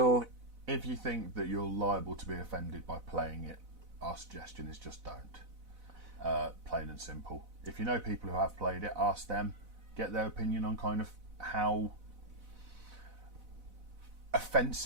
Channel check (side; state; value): left; late; 4.0 ms